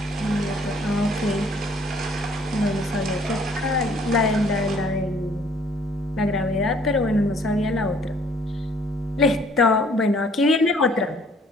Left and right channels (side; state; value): both; normal; correlation 0.60